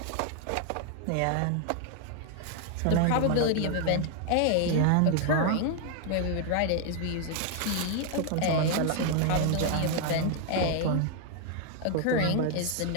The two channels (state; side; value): different; both; correlation 0.00